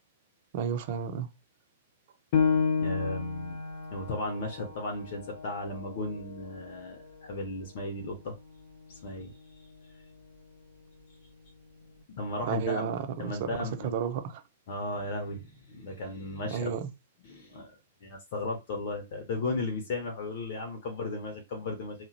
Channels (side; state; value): both; inverted; correlation -0.48